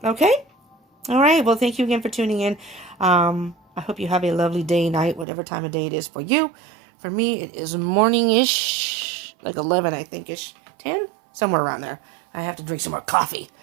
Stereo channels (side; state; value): left; drops out; at 5.2 s